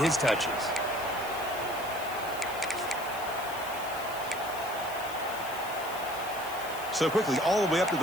his touches. So quickly, all the way up to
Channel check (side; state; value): left; noise; hiss, 14 dB below the sound